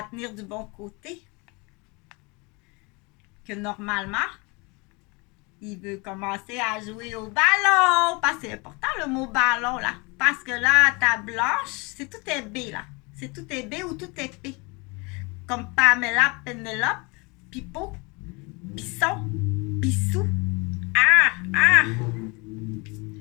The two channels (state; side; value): quieter; right; 28.3 dB